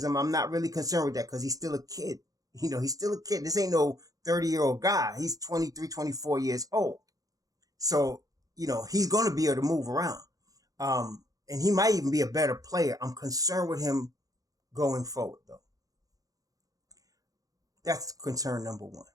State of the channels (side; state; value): left; late; 0.17 ms